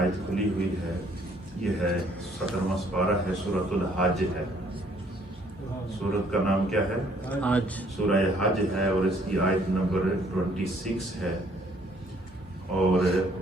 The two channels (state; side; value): normal; both; correlation 0.63